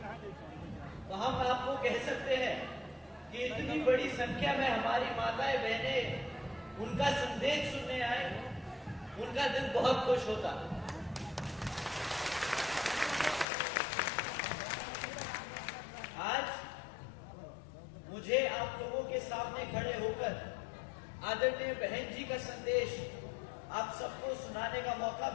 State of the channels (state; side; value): drops out; right; at 13.5 s